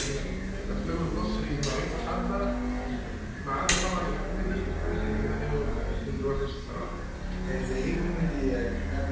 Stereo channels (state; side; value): identical; both; correlation 1.00